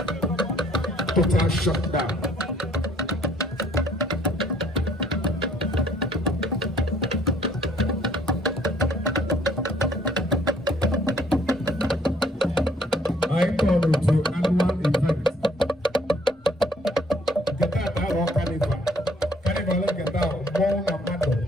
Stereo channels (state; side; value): normal; both; correlation 0.62